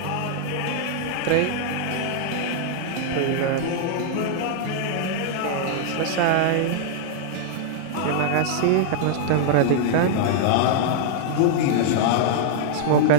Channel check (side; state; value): both; different; correlation -0.01